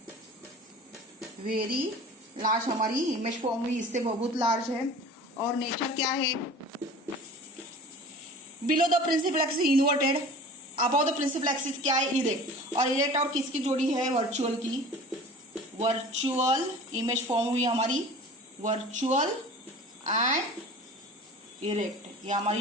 वेरी लार्ज हमारी इमेज फॉर्म हुई, इससे बहुत लार्ज है। और नेचर क्या है? Below the principal axis inverted, above the principal axis क्या है? इरेक्ट। और इरेक्ट और किसकी जोड़ी है? वर्चुअल की। वर्चुअल इमेज फॉर्म हुई हमारी, वर्चुअल एंड इरेक्ट, ये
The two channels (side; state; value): both; normal; correlation 0.41